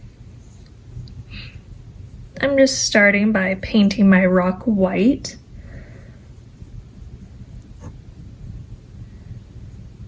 I'm just starting by painting my rock white.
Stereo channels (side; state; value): both; identical; correlation 1.00